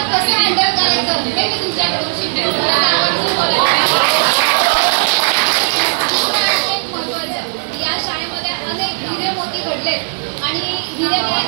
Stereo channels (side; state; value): left; silent; digital silence